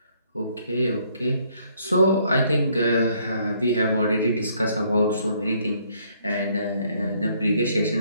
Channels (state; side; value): inverted; both; correlation -0.66